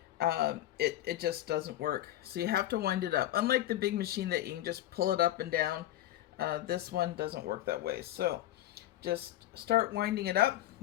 It just doesn't work. So you have to wind it up. Unlike the big machine that you can just pull it up and down, this one doesn't work that way. So just start winding it up.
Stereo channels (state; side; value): quieter; right; 13.9 dB